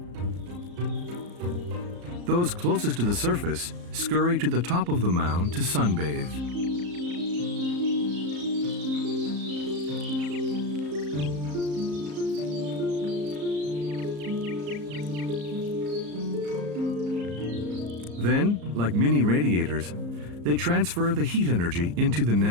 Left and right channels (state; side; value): late; left; 34 ms